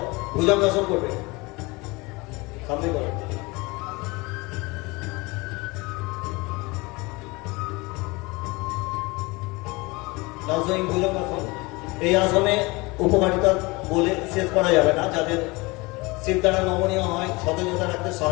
ভুজঙ্গাসন করবে। সামনে করো। নাউজুইং ভুজঙ্গাসন। এই আসনে উপকারিতা বলে শেষ করা যাবে না। যাদের শির দ্বারা নমনীয় হয়, সতেজতা রাখতে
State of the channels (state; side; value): quieter; right; 24.6 dB